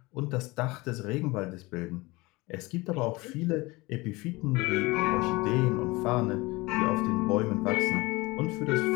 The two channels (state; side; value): quieter; right; 22.8 dB